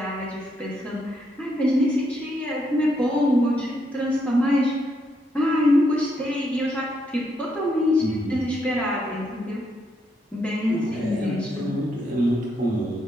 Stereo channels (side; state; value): both; normal; correlation 0.77